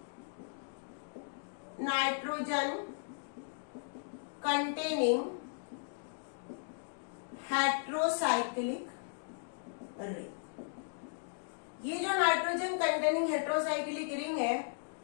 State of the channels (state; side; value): silent; right; digital silence